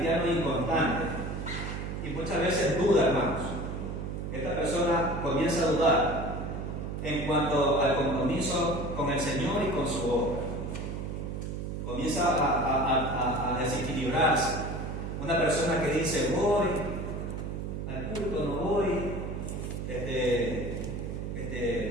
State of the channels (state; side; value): noise; right; hum, 5 dB below the sound